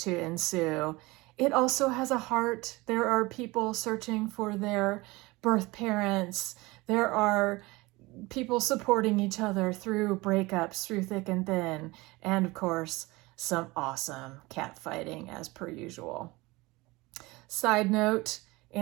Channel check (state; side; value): quieter; left; 22.3 dB